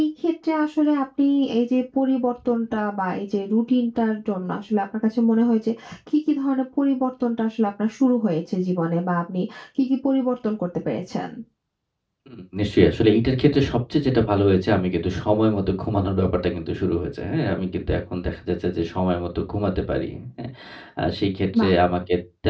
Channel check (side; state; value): both; identical; correlation 1.00